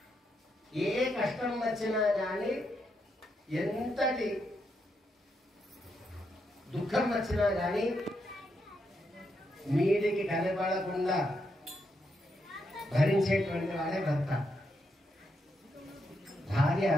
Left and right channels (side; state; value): both; normal; correlation 0.81